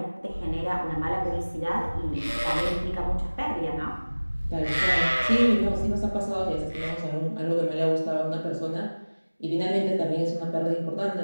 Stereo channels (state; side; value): inverted; both; correlation -1.00